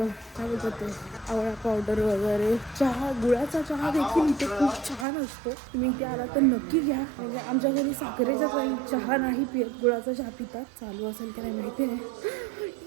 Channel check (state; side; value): drops out; left; at 5.1 s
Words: बोलतात ते आवळा पावडर वगैरे. गुळाचा चहा देखील इथे खूप छान असतो. तुम्ही इथे आला तर नक्की घ्या. म्हणजे आमच्या घरी साखरेचा काही चहा नाही पित, गुळाचा चहा पितात. चालू असेल की नाही माहिती